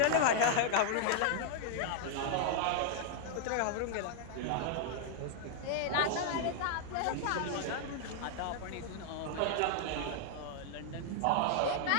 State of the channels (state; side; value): different; both; correlation -0.01